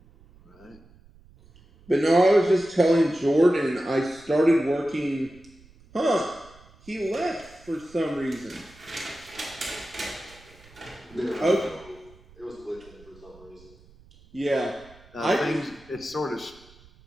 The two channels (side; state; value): right; noise; rumble, 26 dB below the sound